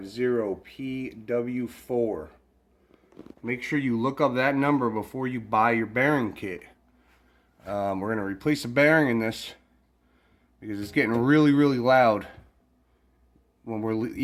Make sure you look up that number before you buy your bearing kit. We're going to replace a bearing in this because it's getting really loud when we're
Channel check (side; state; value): both; identical; correlation 1.00